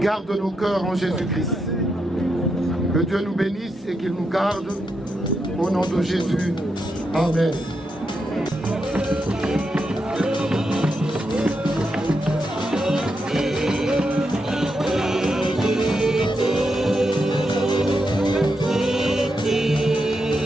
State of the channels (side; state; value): both; normal; correlation 0.84